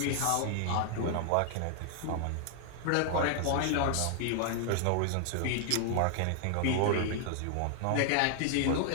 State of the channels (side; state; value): both; different; correlation 0.00